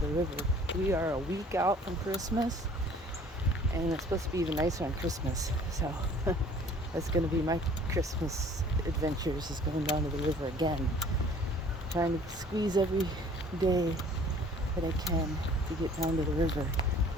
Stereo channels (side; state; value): both; normal; correlation 0.52